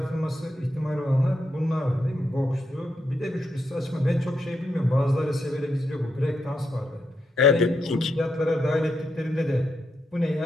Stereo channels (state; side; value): normal; both; correlation 0.81